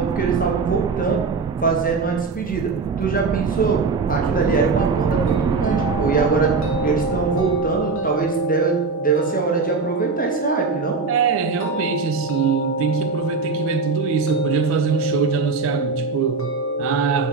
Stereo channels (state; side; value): quieter; left; 4.4 dB